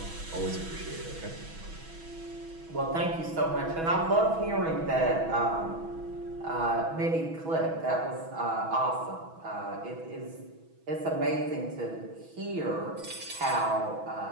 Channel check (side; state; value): left; late; 6.1 ms